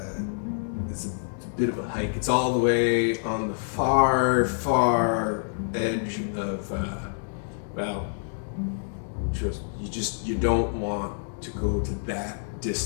bit of a hike. It's all the way on the far edge of, you don't want to go to that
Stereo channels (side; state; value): right; silent; digital silence